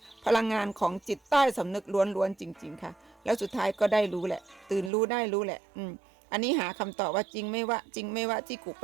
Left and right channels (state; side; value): drops out; left; at 4.9 s